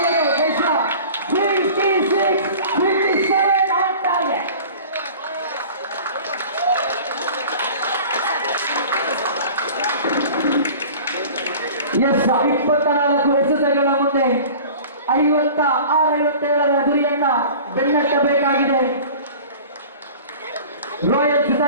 ಎಸ್ 24 ಎಸೆತಗಳ ಮುಂದೆ 56-57 ಗುರಿಯನ್ನ ಬೆನ್ನಟ್ಟಬೇಕಾಗಿದೆ ರಾಯಲ್ಸ್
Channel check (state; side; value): inverted; both; correlation -0.42